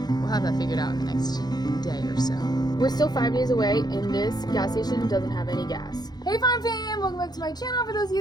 we'll have that figured out in the next day or so. We're still 5 days away, and this gas station doesn't have any gas. Hey farm fam, welcome back to my channel. For those of you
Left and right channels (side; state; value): right; late; 0.19 ms